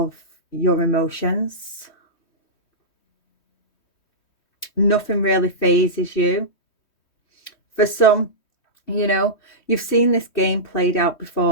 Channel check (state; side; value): late; right; 3.1 ms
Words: your emotions. Nothing really phases you. For some, you know, you've seen this game played out